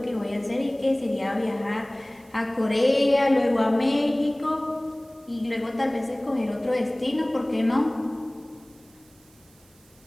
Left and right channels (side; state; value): right; noise; hiss, 29 dB below the sound